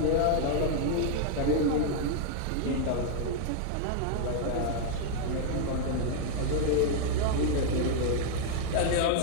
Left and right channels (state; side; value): different; both; correlation -0.01